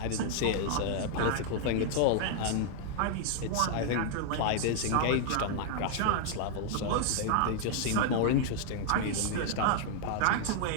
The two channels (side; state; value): both; different; correlation 0.00